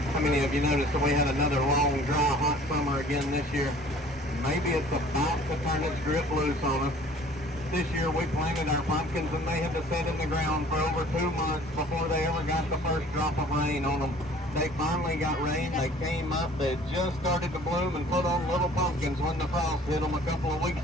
How many of you noticed that we had another long, dry, hot summer again this year? Maybe it's about to turn its grip loose on us. This year we planted our pumpkins and they had to sit in the ground for over 2 months before they ever got the first drop of rain on them. They finally got rain, they came up, they just started to bloom and put on little pumpkins when the frost hit them a couple of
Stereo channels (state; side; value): normal; both; correlation 0.51